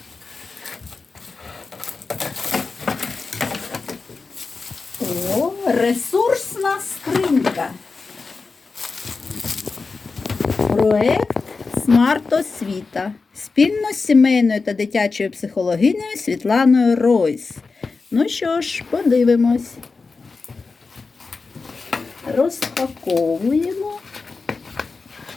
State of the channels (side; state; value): right; quieter; 4.3 dB